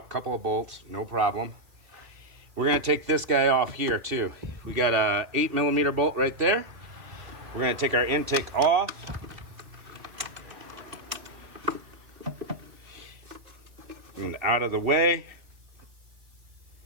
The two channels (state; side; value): late; left; 2.4 ms